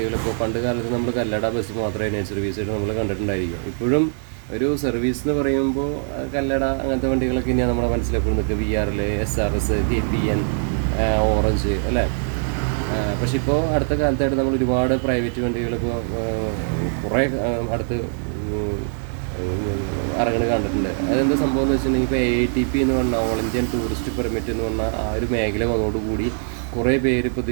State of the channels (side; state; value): left; silent; digital silence